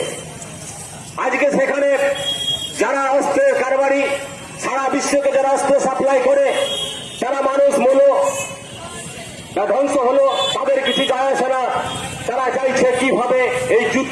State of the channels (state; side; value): identical; both; correlation 1.00